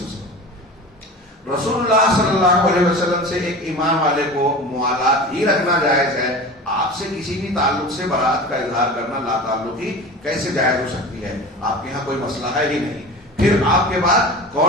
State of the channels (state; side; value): normal; both; correlation 0.34